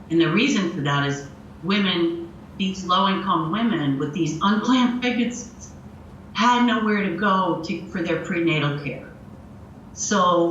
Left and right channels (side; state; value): both; identical; correlation 1.00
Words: And the reason for that is these low-income women with these unplanned pregnancies had nowhere to go for their prenatal care.